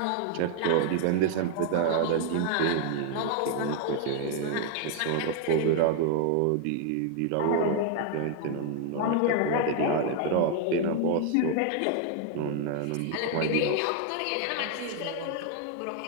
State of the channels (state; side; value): different; both; correlation 0.00